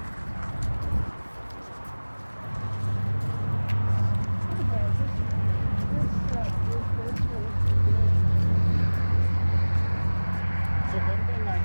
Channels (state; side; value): inverted; both; correlation -1.00